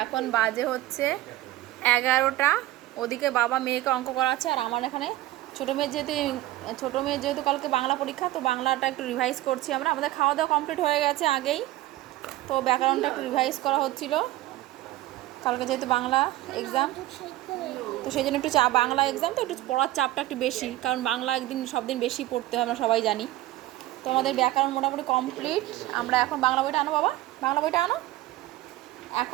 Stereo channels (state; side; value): quieter; left; 16.2 dB